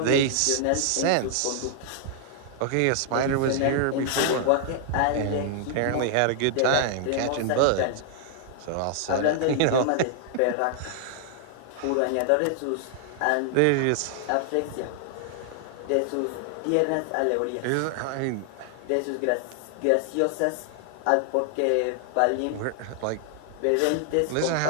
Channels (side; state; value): both; different; correlation 0.00